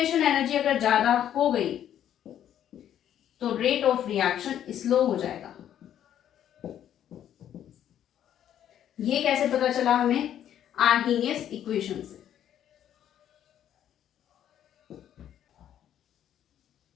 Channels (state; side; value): quieter; right; 10.5 dB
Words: एनर्जी अगर ज्यादा हो गई तो रेट ऑफ रिएक्शन स्लो हो जाएगा। ये कैसे पता चला हमें? आर्हीनियस इक्वेशन से।